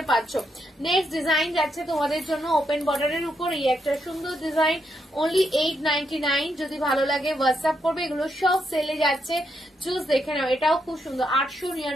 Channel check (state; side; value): normal; both; correlation 0.80